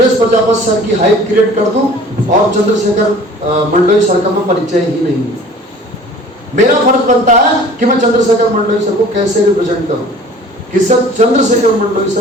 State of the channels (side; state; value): both; normal; correlation 0.47